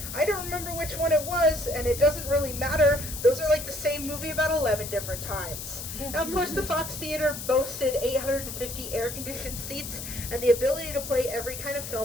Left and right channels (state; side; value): noise; left; hiss, 8 dB below the sound